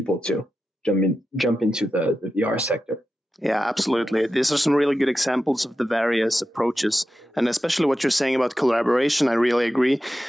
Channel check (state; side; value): normal; both; correlation 0.91